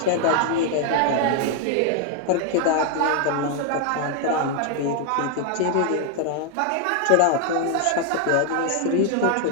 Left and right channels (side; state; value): both; different; correlation 0.00